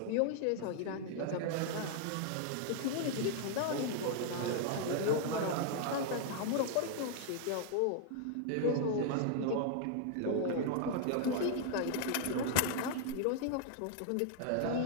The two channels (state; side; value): different; both; correlation 0.00